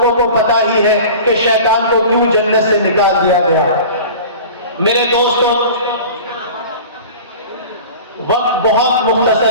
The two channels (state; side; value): inverted; both; correlation -0.38